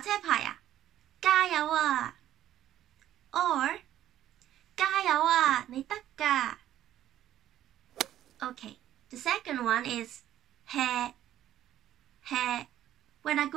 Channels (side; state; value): left; quieter; 12.3 dB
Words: 牌啊？加油啊! Or 加油啊，你得㗎! Okay, the second one is he. He. When I